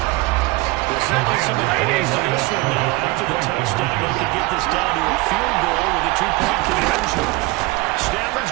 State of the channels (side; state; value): left; quieter; 21.7 dB